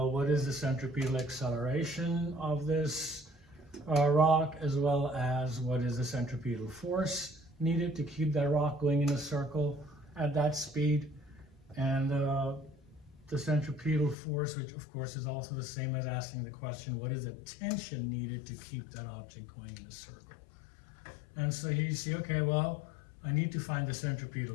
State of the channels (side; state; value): right; drops out; at 14.2 s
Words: what is the centripetal acceleration of this rock, as well as what is the centripetal force needed to keep that rock going in a circle at that speed. And the centripetal force, which of course is also the same as asking the question, what is the tension needed to keep that object going in a circle? And so here you see, okay, well, I need to find the